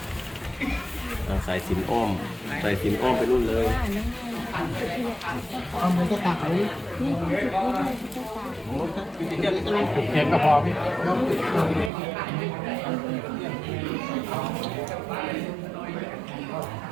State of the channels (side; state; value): left; drops out; at 11.9 s